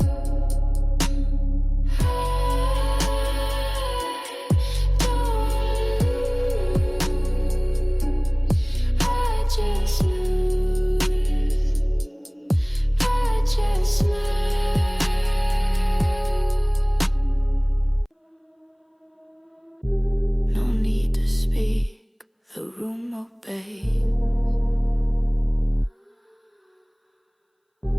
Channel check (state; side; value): identical; both; correlation 1.00